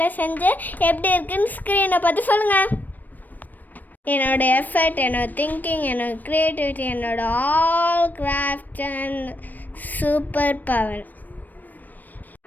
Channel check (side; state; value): right; late; 0.087 ms